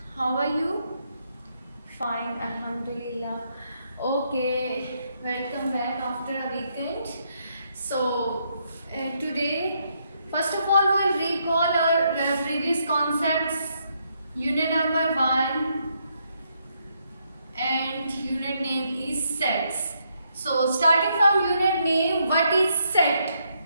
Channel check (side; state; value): both; inverted; correlation -0.76